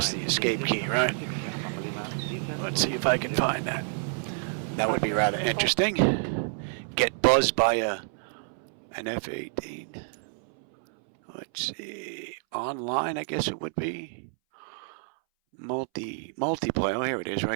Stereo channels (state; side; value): silent; left; 59 dB below the other